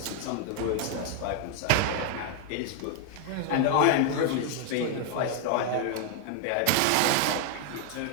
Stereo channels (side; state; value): both; different; correlation 0.00